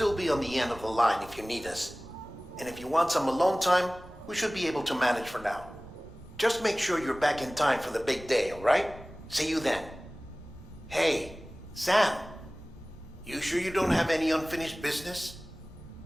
be on the end of the line if you need us. And if you want some alone time, we should be able to manage for now. Just make sure you're back in time for the big day, all right? See you then. Hey, Sam, you sure you don't have any unfinished business?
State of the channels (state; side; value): normal; both; correlation 0.98